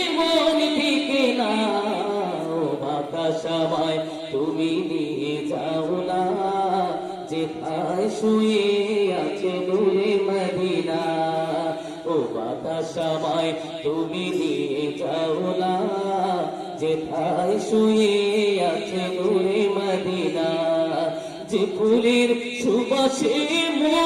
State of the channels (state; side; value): identical; both; correlation 1.00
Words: মন টিকে না, ও বাতাসামায় তুমি নিয়ে যাও না, যেথায় শুয়ে আছে নূরে মদিনা। ও বাতাসামায় তুমি নিয়ে যাও না, যেথায় শুয়ে আছে নূরে মদিনা। যে ফুলের সুবাসে